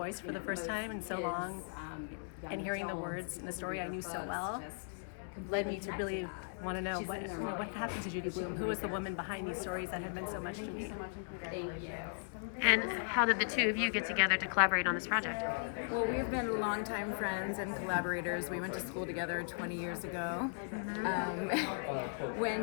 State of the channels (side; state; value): right; silent; digital silence